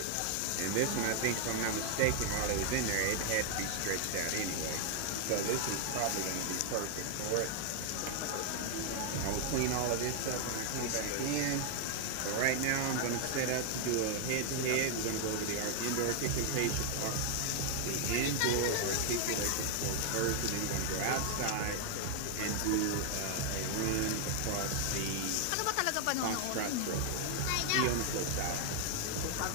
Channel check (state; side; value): different; both; correlation 0.00